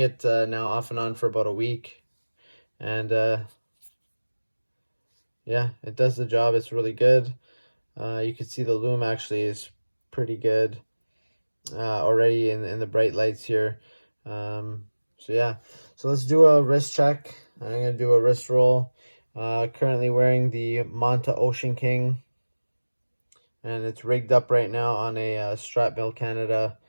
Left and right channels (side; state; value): both; inverted; correlation -1.00